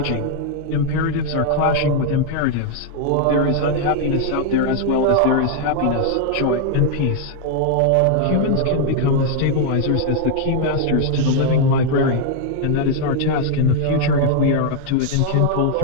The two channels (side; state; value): both; different; correlation 0.00